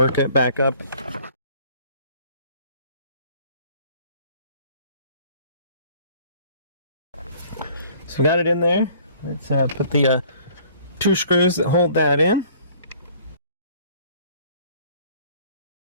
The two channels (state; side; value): inverted; both; correlation -0.55